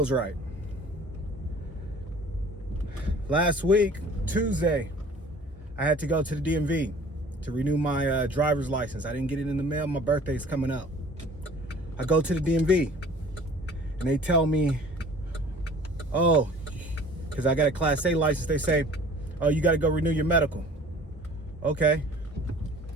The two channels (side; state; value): both; normal; correlation 0.48